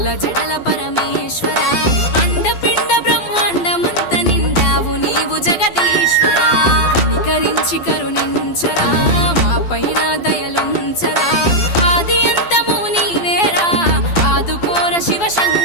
జడల పరమేశ్వర అండపిండ బ్రహ్మాండమంత నిండావు నీవు జగదీశ్వర కనికరించి కరుణించరా మా పైన దయలుంచరా ఆది అంతము నీవేరా ఆదుకోర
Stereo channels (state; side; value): late; right; 12 ms